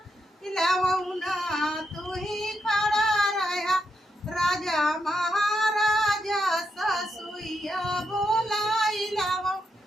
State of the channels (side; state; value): both; normal; correlation 0.82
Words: लवना तू ही खड़ा रहा राजा महाराजा ससुइया बोलाई